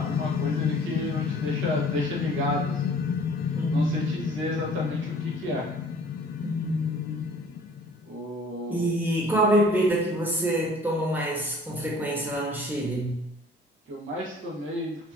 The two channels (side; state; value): both; normal; correlation 0.51